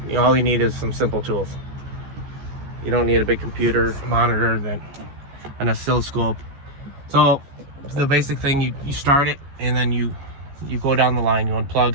all you need is some simple tools. You don't need a big computer monitor, an oscilloscope. So the basic thing, you start it, and then you go down the line. You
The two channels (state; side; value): late; left; 14 ms